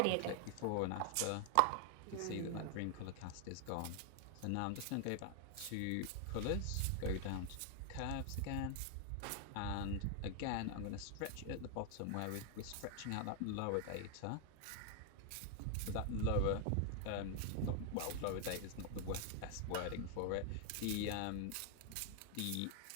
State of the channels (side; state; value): both; different; correlation 0.00